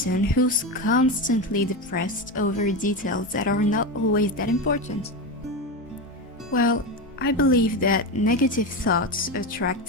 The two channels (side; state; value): both; normal; correlation 0.17